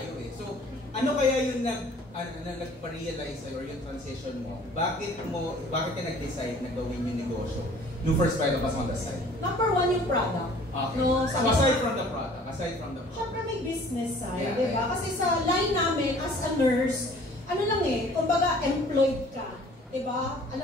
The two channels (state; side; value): normal; both; correlation 0.52